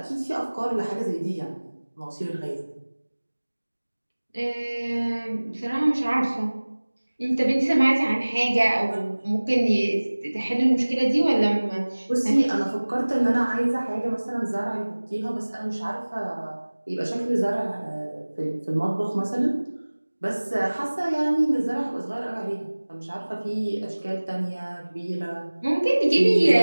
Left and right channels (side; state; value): both; inverted; correlation -1.00